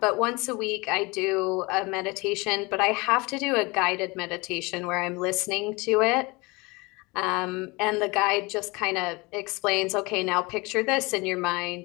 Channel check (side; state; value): right; quieter; 25.2 dB